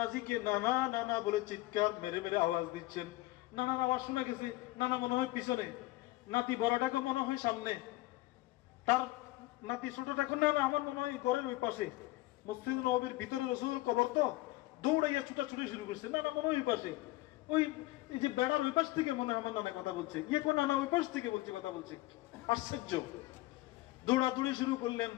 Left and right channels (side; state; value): right; quieter; 18.8 dB